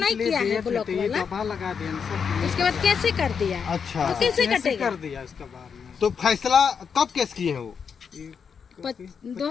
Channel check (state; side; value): quieter; right; 6.5 dB